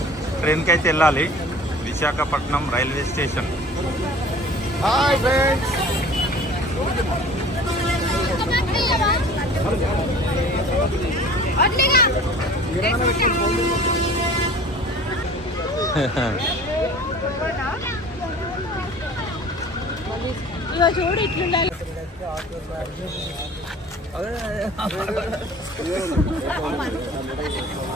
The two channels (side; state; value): both; normal; correlation 0.45